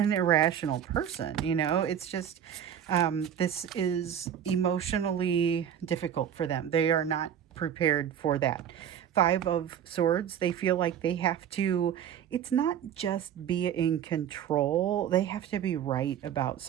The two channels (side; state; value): left; quieter; 9.2 dB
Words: irrational person, you know. It's just this is emotionally difficult for them. They are not prepared for that. Five of Swords, they feel like they have to, it's not just be in control. They have to be right about